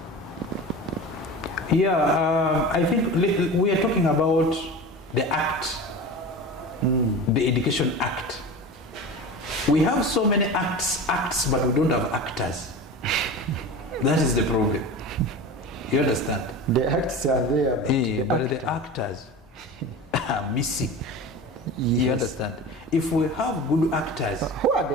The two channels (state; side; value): normal; both; correlation 0.32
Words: Yeah, I think we are talking about the Act, the Education Act. We have so many acts, but we don't have actors. That is the problem. You understand? The acts are there, but the actors are missing. Yes. You understand? If we have good actors, who are